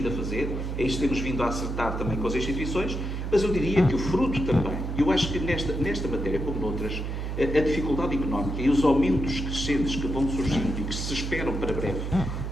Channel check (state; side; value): noise; right; hum, 3 dB below the sound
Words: a fazer, é isso que temos vindo a acertar também com as instituições, mas eu diria que o fruto também, eu acho que nesta matéria, como noutras, a dificuldade económica e os aumentos crescentes que vão surgindo e que se esperam para breve,